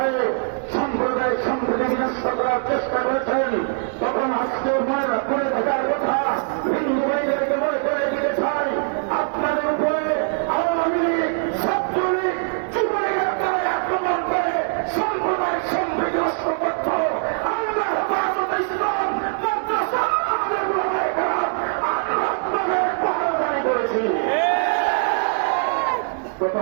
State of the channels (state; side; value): silent; left; digital silence